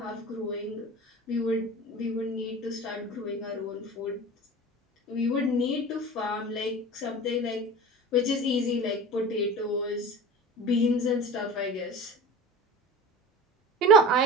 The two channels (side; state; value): both; normal; correlation 0.34